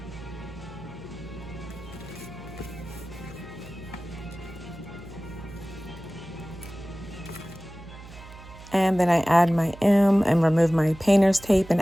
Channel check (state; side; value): noise; right; hum, 17 dB below the sound